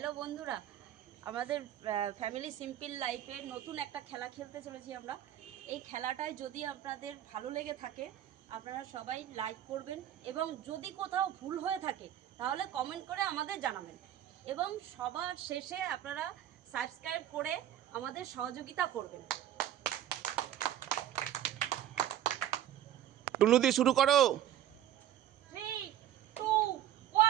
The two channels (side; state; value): left; quieter; 11.7 dB